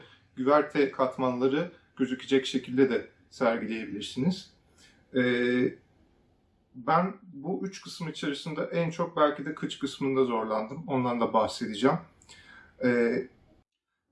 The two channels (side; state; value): both; identical; correlation 1.00